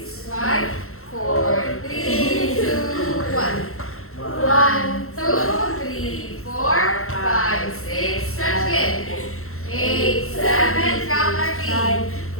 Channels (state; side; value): late; right; 0.63 ms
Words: 5, 4, 3, 2, 1. 1, 2, 3, 4, 5, 6, stretch again. 8, 7, count our feet.